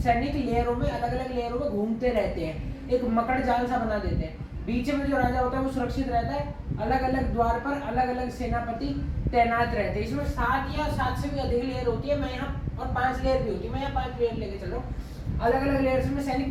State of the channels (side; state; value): both; identical; correlation 1.00